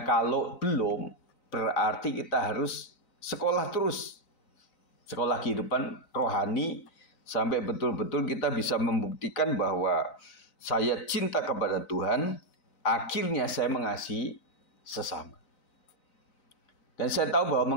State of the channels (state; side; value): late; right; 3.9 ms